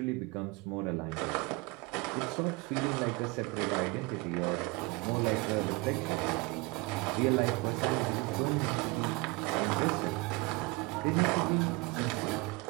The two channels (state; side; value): quieter; left; 25.1 dB